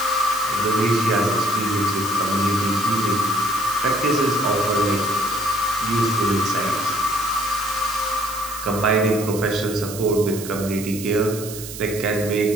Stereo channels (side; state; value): right; noise; hiss, 11 dB below the sound